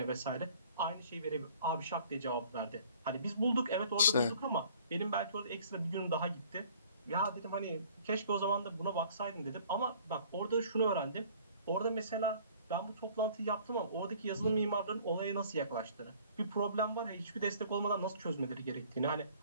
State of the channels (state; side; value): inverted; both; correlation -0.53